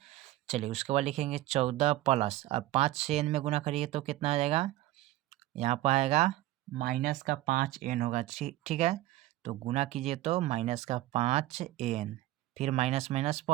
चलिए उसके बाद लिखेंगे 14 प्लस, अब 5 से एन में गुना करिए तो कितना आ जाएगा, यहाँ पर आएगा माइनस का 5 एन होगा, ठीक है। तो गुना कीजिए तो माइनस का 5 एन, फिर माइनस माइनस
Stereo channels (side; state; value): left; quieter; 16.1 dB